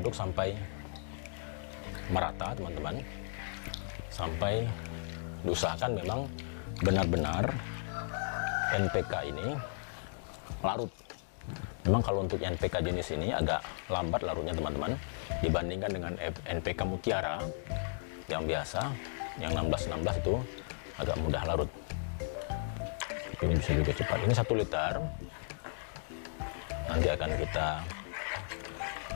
sampai merata teman-teman, sampai diusahakan memang benar-benar NPK ini larut. Memang kalau untuk NPK jenis ini agak lambat larutnya teman-teman, dibandingkan dengan NPK Mutiara yang biasa, yang 16-16 itu agak mudah larut. Ini bisa juga cepat. Ini 1 liter. Nanti akan kita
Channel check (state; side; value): silent; right; digital silence